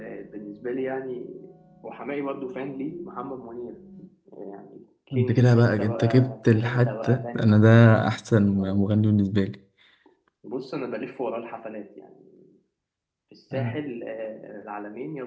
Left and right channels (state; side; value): identical; both; correlation 1.00